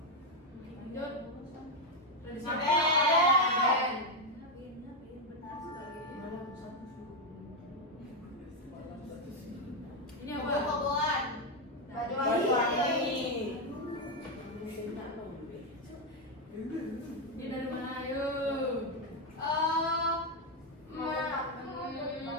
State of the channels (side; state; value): both; normal; correlation 0.05